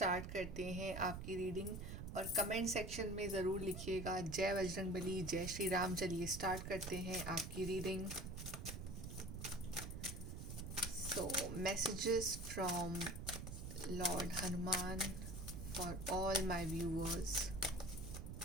करते हैं आपकी रीडिंग। और कमेंट सेक्शन में ज़रूर लिखिएगा जय बजरंग बली, जय श्री राम। चलिए स्टार्ट करते हैं आपकी reading. So, messages from Lord Hanuman for all my viewers.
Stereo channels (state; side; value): noise; right; rumble, 7 dB below the sound